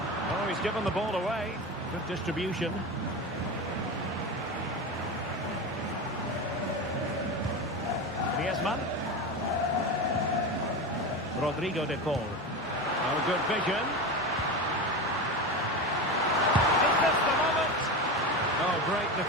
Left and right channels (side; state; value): both; normal; correlation 0.22